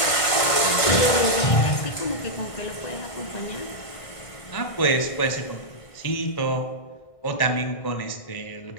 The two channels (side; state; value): right; late; 1.6 ms